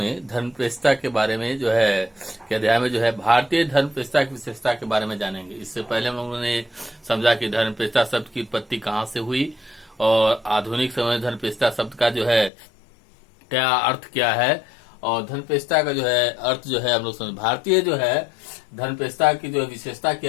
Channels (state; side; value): drops out; right; at 12.5 s